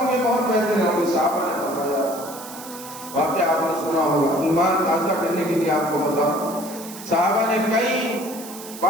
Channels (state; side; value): noise; right; hiss, 14 dB below the sound